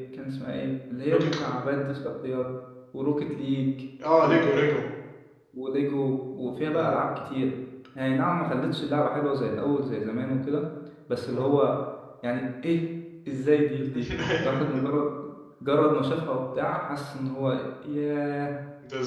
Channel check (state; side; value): identical; both; correlation 1.00